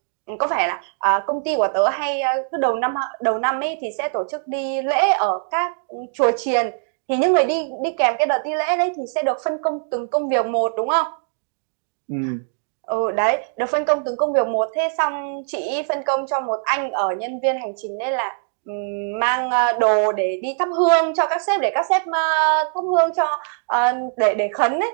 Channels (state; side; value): silent; left; digital silence